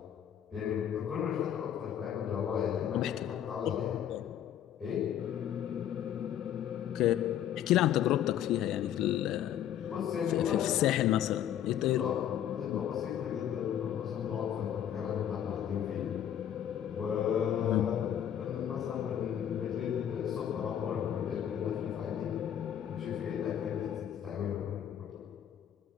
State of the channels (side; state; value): right; quieter; 10.2 dB